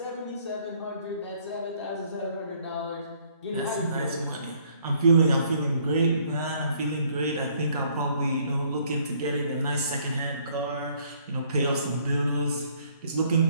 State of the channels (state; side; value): inverted; both; correlation -0.63